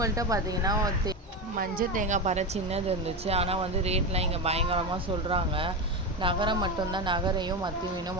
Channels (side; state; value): both; normal; correlation 0.17